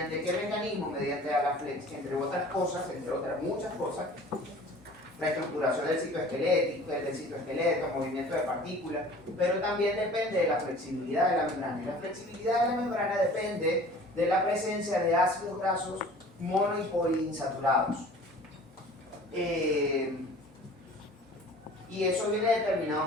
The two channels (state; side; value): normal; both; correlation 0.46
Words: qué mecanismo? Mediante Agaflex, entre otras cosas, entre otras muchas cosas, la estructuración del citoesqueleto, movimiento de partículas, pero también depende de la flexibilidad de la membrana. Y la flexibilidad de la membrana depende de la presencia de ácidos grasos mono y poliinsaturados. Y eso viene